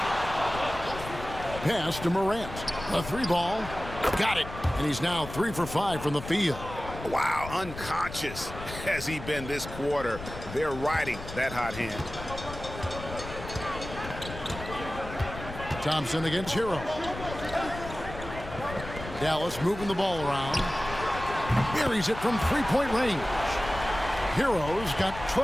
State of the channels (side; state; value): left; noise; rumble, 11 dB below the sound